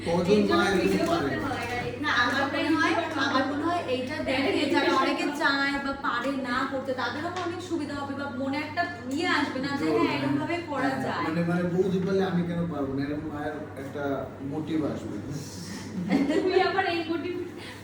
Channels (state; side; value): identical; both; correlation 1.00